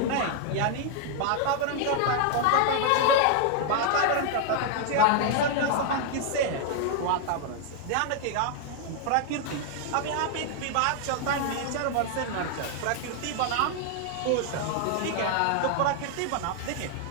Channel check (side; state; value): both; different; correlation 0.00